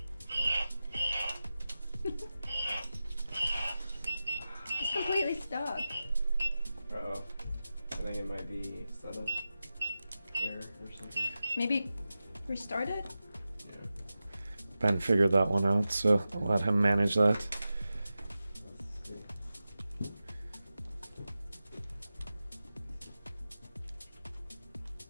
He's completely stuck. Uh-oh. I think it might be setup error or something. Maybe restart it? Ben figured that one out, so I'll let him manage that. Let's see.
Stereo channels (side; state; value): both; inverted; correlation -0.94